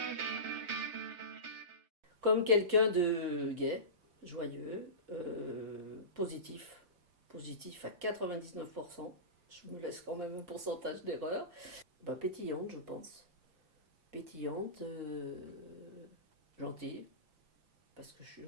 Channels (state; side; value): late; left; 5.7 ms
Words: comme quelqu'un de gai, joyeux, positif, positif à 99%. Je me laisse quand même un pourcentage d'erreur. Ben, pétillante, je pense. Pétillante, gentille, parce que je suis